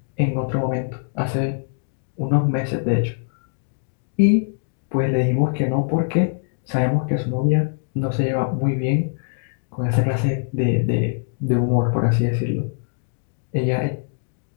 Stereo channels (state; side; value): silent; right; digital silence